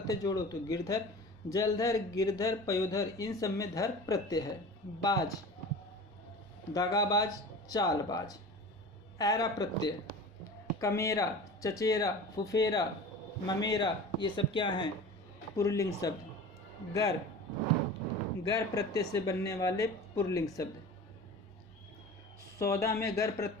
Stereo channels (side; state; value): both; normal; correlation 0.36